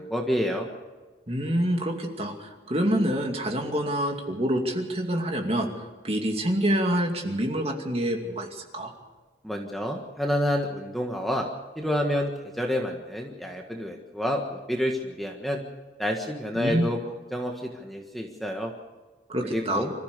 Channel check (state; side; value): normal; both; correlation 0.71